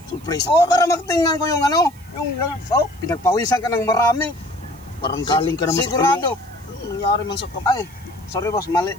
Surprise. Oo, para magtingnan ko yung ano, pinagpawisan ka ng marami. Parang galing ka naman sigurado. sa nangyari man sa Ay, sorry boss, mali.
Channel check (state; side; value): noise; right; hiss, 27 dB below the sound